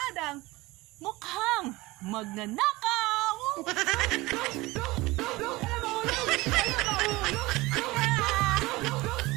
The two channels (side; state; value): left; quieter; 20.8 dB